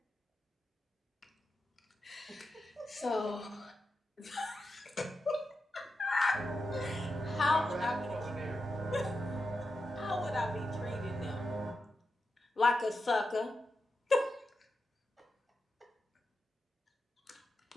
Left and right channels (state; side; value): normal; both; correlation 0.89